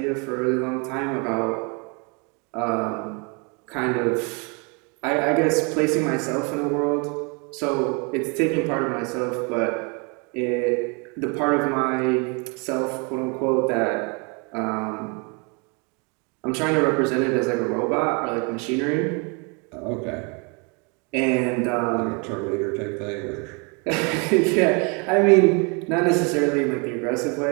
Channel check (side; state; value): left; quieter; 32.9 dB